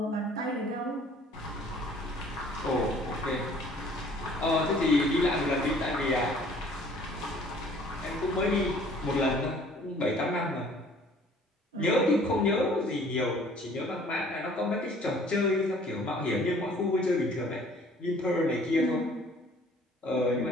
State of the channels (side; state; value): both; normal; correlation 0.54